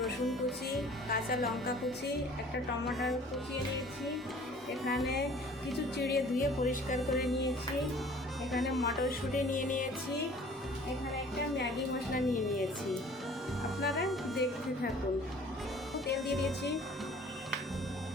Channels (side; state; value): both; normal; correlation 0.50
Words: কুচি, কাঁচা লঙ্কা কুচি, একটা টমেটো কুচিয়ে নিয়েছি। এখানে কিছু চিড়ে ধুয়ে পরিষ্কার করে নিয়েছি। এখানে মটরশুঁটি নিয়ে নিয়েছি। এখানে একটা ম্যাগি মশলা নিয়ে নিয়েছি। আপনারা দেখতে থাকুন। তেল দিয়ে দিয়েছি।